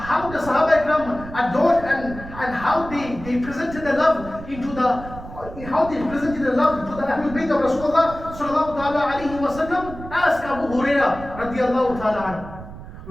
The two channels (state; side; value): noise; right; rumble, 13 dB below the sound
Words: the Sahaba Ikram adored and how they presented the love into the Ahlul Bayt of Rasulullah sallallahu ta'ala alayhi wa sallam? Ask Abu Hurairah radiyallahu ta'ala anhu.